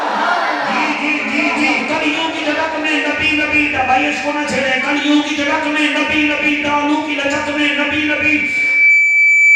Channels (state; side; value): identical; both; correlation 1.00